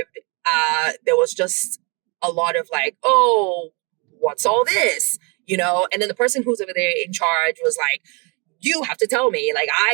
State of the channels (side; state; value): left; quieter; 31.5 dB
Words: there was just a lot of like, oh, what's all this? And then the person who's over there in charge was like, you have to tell me, like,